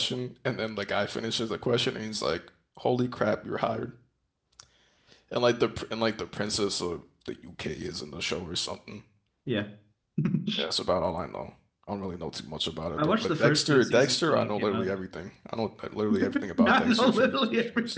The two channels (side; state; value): both; identical; correlation 1.00